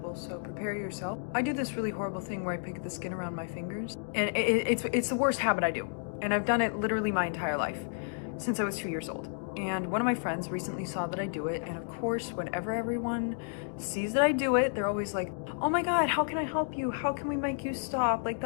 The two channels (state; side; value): silent; right; digital silence